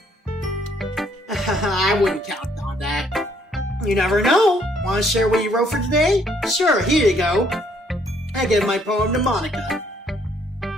I wouldn't count on that. You never know. Want to share what you wrote for today? Sure, here you go. I give my poem to Monica.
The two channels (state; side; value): normal; both; correlation 0.66